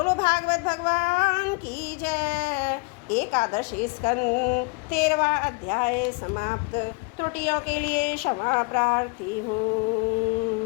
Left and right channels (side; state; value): right; quieter; 29.4 dB